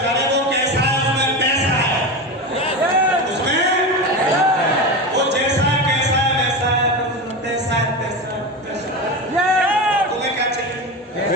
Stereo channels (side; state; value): both; normal; correlation 0.22